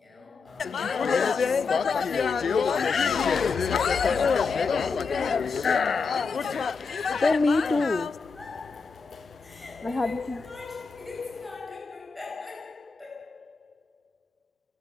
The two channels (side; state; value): right; quieter; 4.9 dB